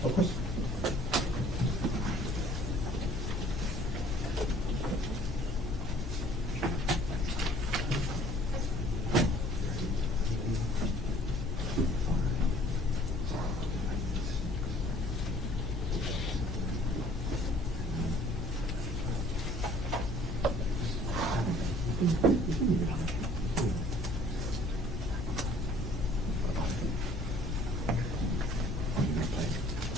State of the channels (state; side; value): normal; both; correlation 0.55